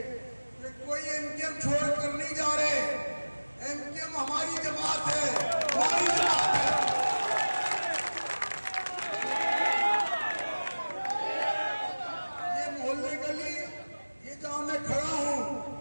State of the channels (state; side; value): inverted; both; correlation -1.00